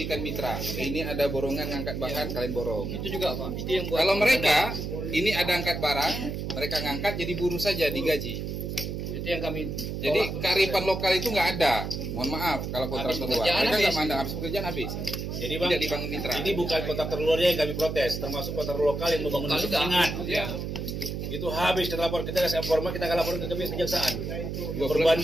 mitra. Ini ada borongan ngangkat bahan, kalian borong. Itu juga Pak. Itu yang buat. Kalau mereka ini ada angkat barang, mereka ngangkat jadi buruh saja digaji. Itu yang kami. Jadi kearifan lokal itu nggak ada. Mohon maaf kalau kontraktor luar. Mereka nggak mandang habis pekerjaan habis. Jadi Bang, tidak dibangun mitra. Ini bukan kontraktor luarnya yang kami protes, termasuk kontraktor lokal yang membangun penyengat. Ya. Itu habis kita lapor, kita kasih informa, kita akan laporin ke kejaksaan.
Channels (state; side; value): noise; right; hum, 4 dB below the sound